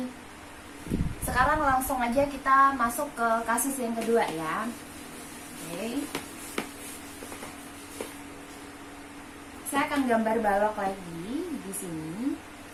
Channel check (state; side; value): identical; both; correlation 1.00